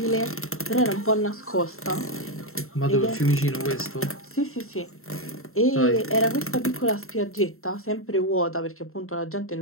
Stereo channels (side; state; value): right; late; 0.62 ms